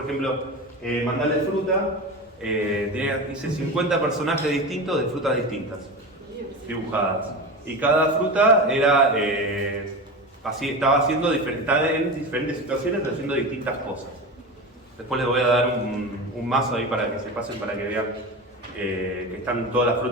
ejemplo, mandarle fruta, hice 50 personajes distintos de frutas distintas, dibujadas. Y cada fruta era así estaba haciendo estaba en diferentes situaciones haciendo distintas cosas. Después les voy a dar un mazo ahí para que se pasen, para que vean que están todas las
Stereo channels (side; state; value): both; normal; correlation 0.25